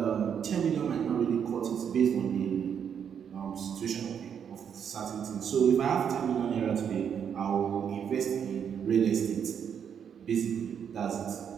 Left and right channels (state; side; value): quieter; left; 7.9 dB